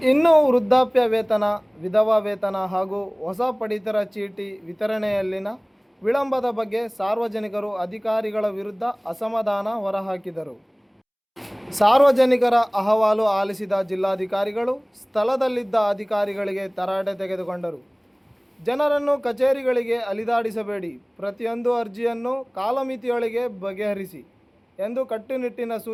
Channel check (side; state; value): both; identical; correlation 1.00